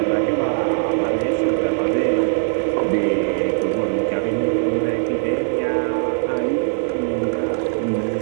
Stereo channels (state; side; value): silent; left; 65 dB below the other